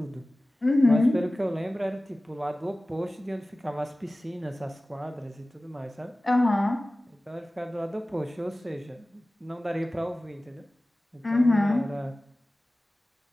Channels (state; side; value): normal; both; correlation 0.97